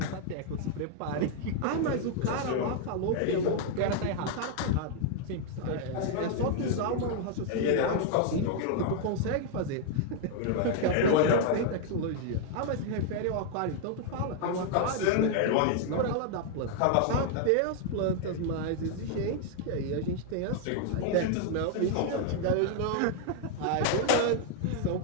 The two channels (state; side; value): different; both; correlation 0.00